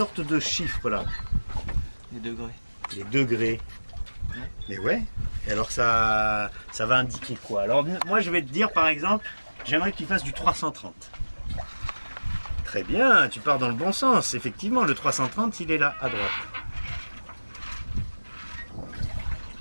de chiffres là. Les degrés. Les degrés. Et ouais. Et alors ça va indiquer quoi? Alors moi je vais te dire par exemple, j'aimerais que tu fasses du 330. Très bien, tu pars dans le bon sens. Effectivement, le 330 il est là à droite.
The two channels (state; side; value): inverted; both; correlation -1.00